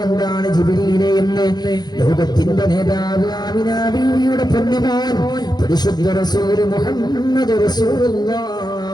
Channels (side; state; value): right; late; 0.20 ms